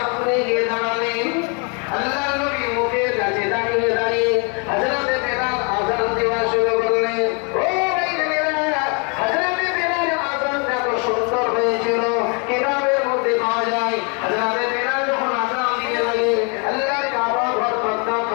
গিয়ে দাঁড়ালেন, আল্লাহ নবী মুখের কাছে দাঁড়িয়ে হযরতে বেলাল আযান দেওয়া শুরু করলেন। ও ভাই বেলাল, হযরতে বেলাল আযানটা এত সুন্দর হয়েছিল, কিতাবের মধ্যে পাওয়া যায় হযরতে বেলাল যখন আযান দিতে লাগে আল্লাহর কাবা ঘর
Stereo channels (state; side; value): quieter; right; 34.9 dB